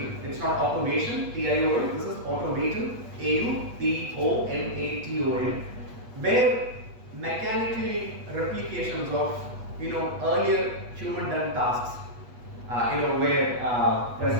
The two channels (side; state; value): left; late; 8.4 ms